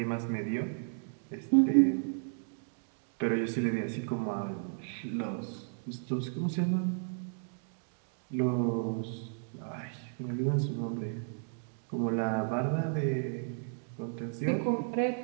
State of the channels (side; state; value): left; silent; digital silence